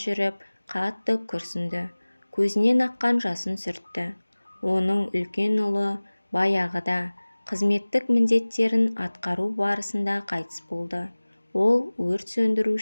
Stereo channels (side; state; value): both; inverted; correlation -1.00